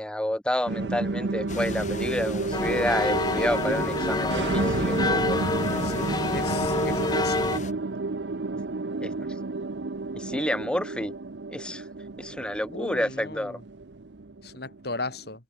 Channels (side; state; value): both; normal; correlation 0.50